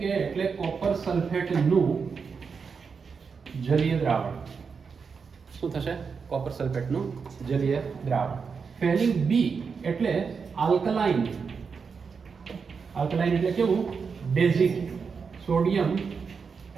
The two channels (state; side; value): quieter; left; 5.6 dB